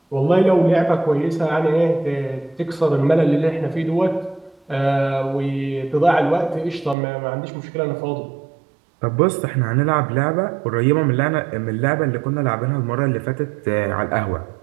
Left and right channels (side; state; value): left; drops out; at 7.0 s